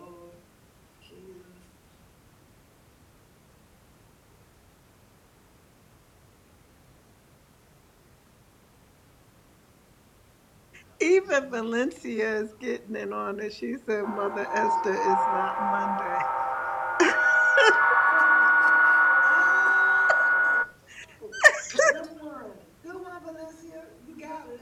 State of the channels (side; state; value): both; identical; correlation 1.00